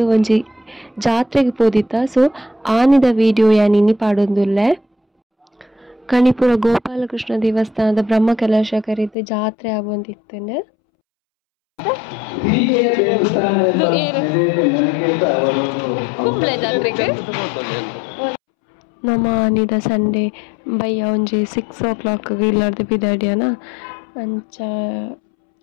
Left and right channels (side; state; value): right; drops out; at 9.2 s